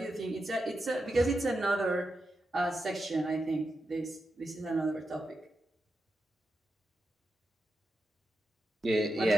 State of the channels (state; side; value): normal; both; correlation 0.88